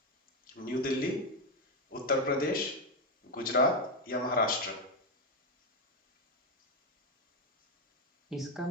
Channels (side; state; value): both; normal; correlation 0.07